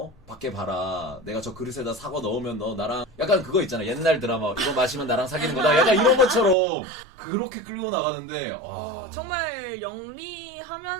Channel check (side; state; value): left; drops out; at 6.6 s